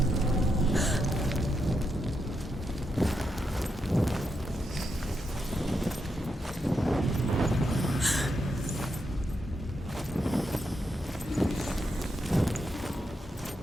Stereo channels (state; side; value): normal; both; correlation 0.83